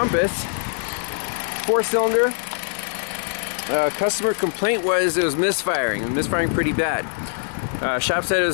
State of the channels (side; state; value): right; silent; 57 dB below the other